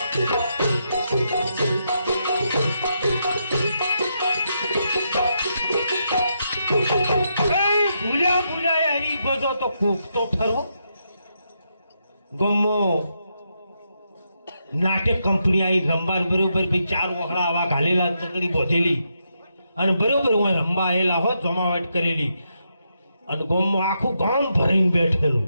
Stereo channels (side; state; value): both; inverted; correlation -0.81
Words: ભૂલ્યા હરી ભજો તો કોક તો ખરો. ગમો નાટક કંપની આવી રમવા બરોબર ભાઈ 4 વખડા આવા ઘાલેલા, ચકડી બોધેલી અને બરોબર હું રમવા આવેલા હોત, જમાવટ કરેલી. અને ગામમાં આખું ગામ ભરીને બેઠેલું.